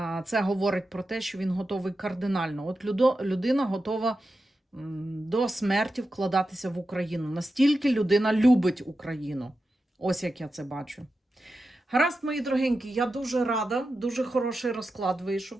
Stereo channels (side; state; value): both; normal; correlation 0.91